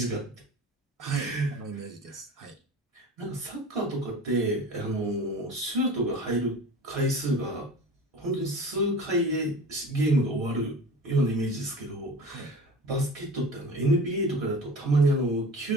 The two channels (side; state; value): both; normal; correlation 0.37